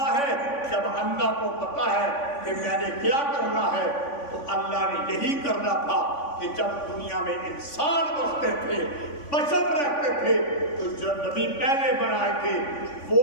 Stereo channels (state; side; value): late; right; 3.5 ms